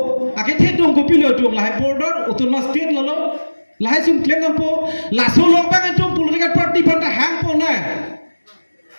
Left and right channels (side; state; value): both; inverted; correlation -1.00